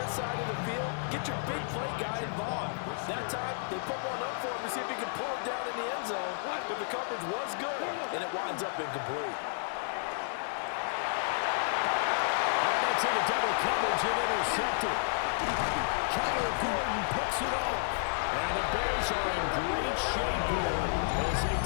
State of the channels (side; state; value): right; silent; digital silence